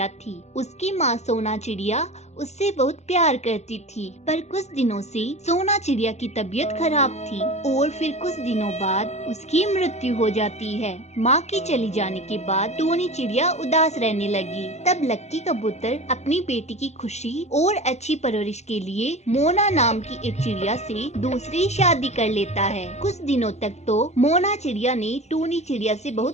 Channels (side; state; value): right; late; 0.32 ms